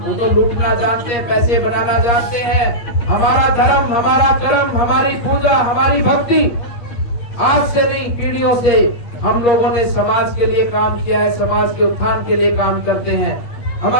तो लूटना जानते हैं, पैसे बनाना जानते हैं। हमारा धर्म, हमारा कर्म, हमारी पूजा, हमारी भक्ति आज से नहीं, पीढ़ियों से हम लोगों ने समाज के लिए काम किया है, समाज के उत्थान के लिए काम करते हैं।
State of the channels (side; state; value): right; late; 8.5 ms